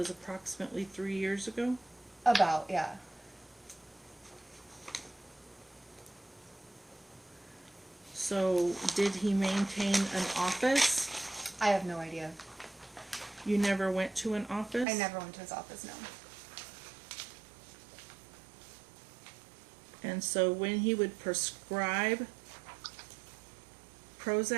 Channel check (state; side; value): drops out; left; at 14.9 s